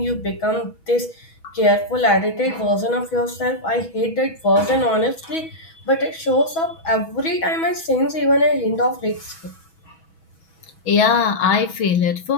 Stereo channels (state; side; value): late; right; 6.2 ms